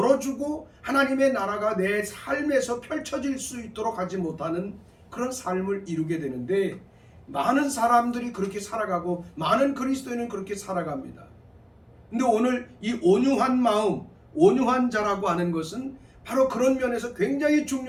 하나님의 나라가 내 삶에서 펼쳐질 수 있도록 하지 못하는 그런 삶을 이루게 되는데, 많은 사람들이 그렇게 살아가고 많은 그리스도인은 그렇게 살아갑니다. 근데 오늘 이 온유한 마음, 온유한 자라고 하는 것은 바로 그런 면에서 굉장히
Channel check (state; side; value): identical; both; correlation 1.00